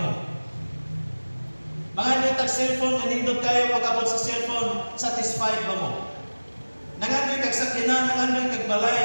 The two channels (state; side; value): inverted; both; correlation -1.00